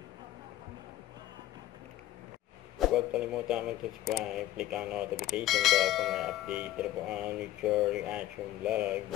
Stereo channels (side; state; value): right; quieter; 14.2 dB